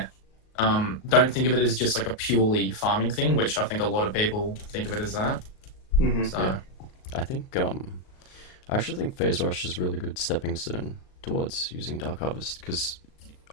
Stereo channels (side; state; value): right; late; 38 ms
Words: Don't think of it as just like a purely farming thing, which I think a lot of people think of it as that. So. Yeah. I think, I actually think Phase Rush is really good stepping stone towards using Dark Harvest, because